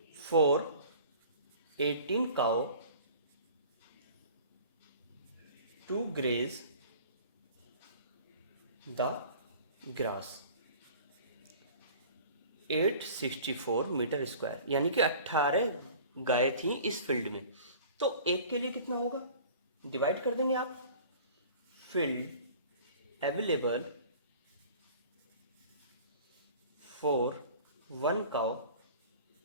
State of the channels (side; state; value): both; inverted; correlation -0.45